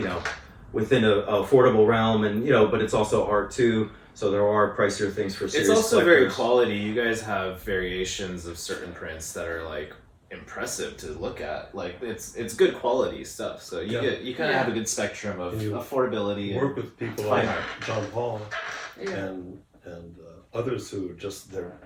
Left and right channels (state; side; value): identical; both; correlation 1.00